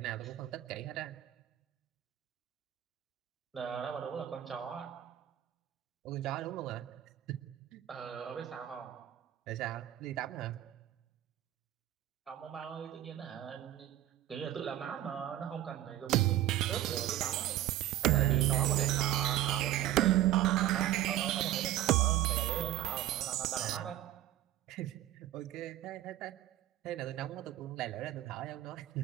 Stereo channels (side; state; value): left; quieter; 13.1 dB